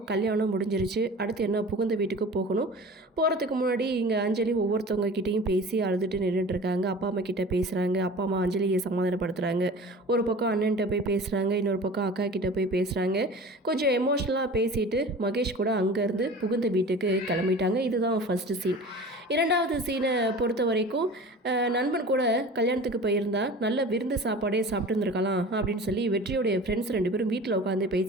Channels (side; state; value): both; normal; correlation 0.39